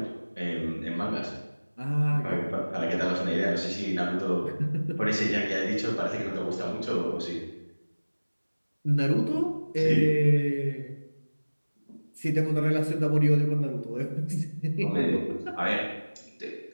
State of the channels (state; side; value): inverted; both; correlation -1.00